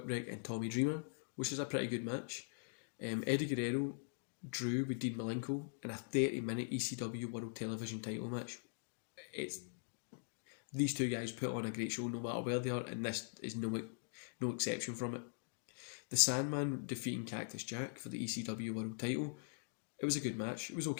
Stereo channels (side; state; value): right; silent; digital silence